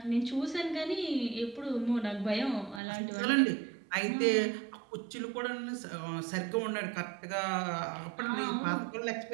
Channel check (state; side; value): drops out; left; at 2.8 s